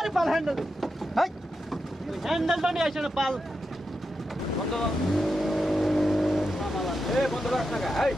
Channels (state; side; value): normal; both; correlation 0.88